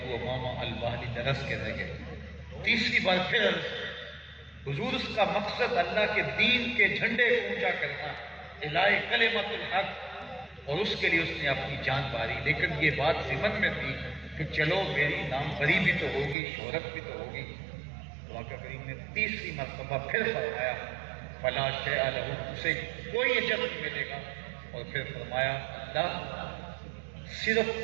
امامہ الباہلی درس کے رہ گئے، تیسری بار پھر حضور اس کا مقصد اللہ کے دین کے جھنڈے کو اونچا کرنا، اعلاء کلمۃ الحق، اور اس کے لیے اس نے اپنی جان ماری، لیکن یہ بات ضمن میں تھی کہ چلو میری نام بری بھی تو ہوگی، شہرت بھی تو ہوگی۔ آقا کریم نے تیسری مرتبہ پھر فرمایا فلا شیء لہ، اسے کوئی اجر نہیں ملے گا، اور پھر فرمایا اللہ صرف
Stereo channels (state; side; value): drops out; left; at 16.4 s